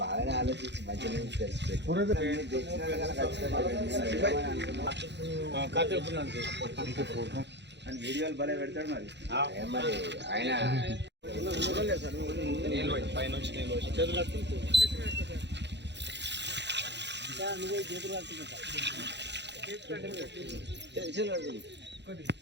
ఆలోచించి మంచిగా వీడియోలు భలే పెడతాడు మరి ఆయన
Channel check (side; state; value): left; late; 0.51 ms